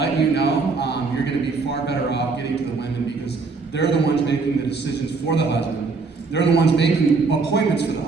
you know, you're going to be far better off getting to the women because they're the ones making the decisions for the husband. They're the ones making appointments for the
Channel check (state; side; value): quieter; left; 4.3 dB